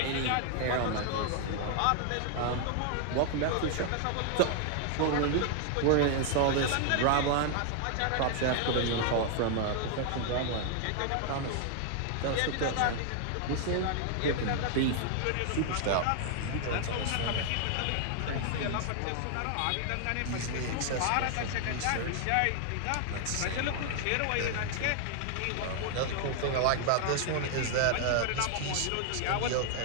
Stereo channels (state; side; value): different; both; correlation 0.00